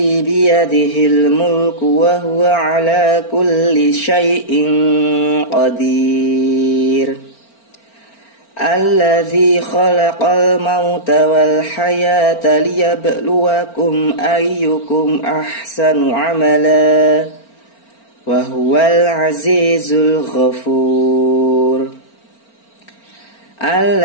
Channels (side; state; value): right; late; 4.4 ms